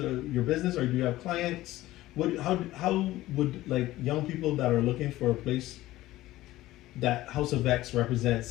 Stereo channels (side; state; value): right; quieter; 16.4 dB